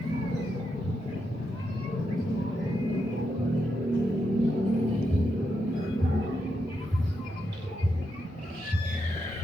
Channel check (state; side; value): normal; both; correlation 0.83